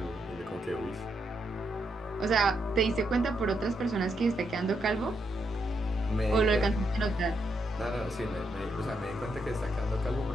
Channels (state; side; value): normal; both; correlation 0.80